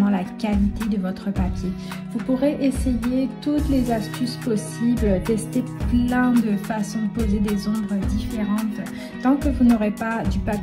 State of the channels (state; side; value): identical; both; correlation 1.00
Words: la qualité de votre papier. Vous pourrez essayer toutes les astuces possibles, tester plein de façons de poser des ombres différentes. Tant que vous n'aurez pas du